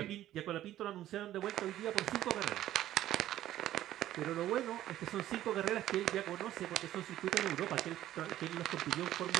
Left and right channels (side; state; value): left; quieter; 13.2 dB